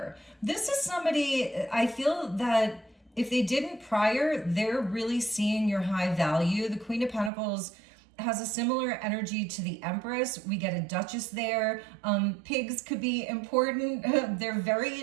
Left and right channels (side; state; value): left; drops out; at 7.3 s